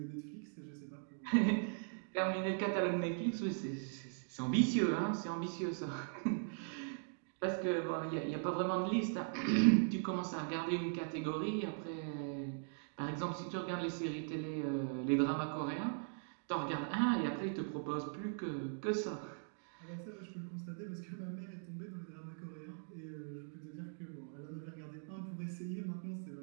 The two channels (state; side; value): silent; left; digital silence